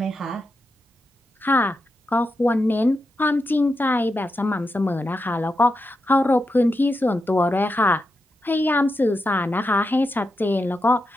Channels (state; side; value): normal; both; correlation 0.87